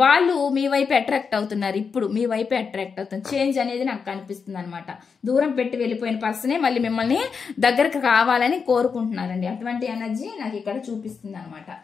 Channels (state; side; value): quieter; right; 5.7 dB